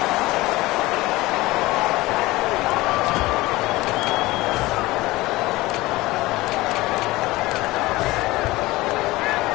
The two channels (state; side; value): quieter; right; 19.7 dB